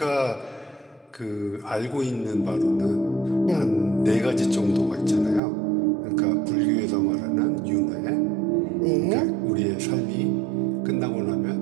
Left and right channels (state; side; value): drops out; left; at 5.4 s